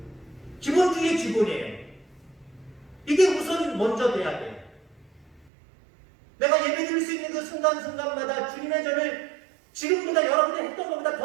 기본 중에 기본이에요. 이게 우선 먼저 돼야 돼요. 내가 예배 드릴 수 있는 그 순간순간마다 주님의 전을 지금보다 여러분이 했던 것보다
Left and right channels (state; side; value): drops out; left; at 5.5 s